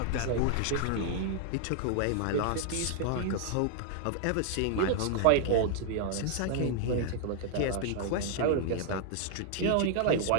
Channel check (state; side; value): different; both; correlation 0.00